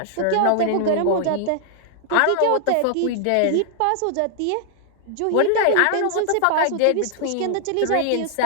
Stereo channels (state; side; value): different; both; correlation -0.01